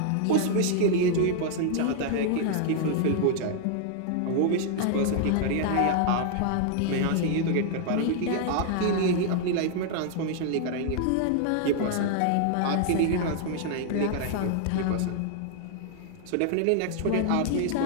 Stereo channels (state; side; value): different; both; correlation 0.00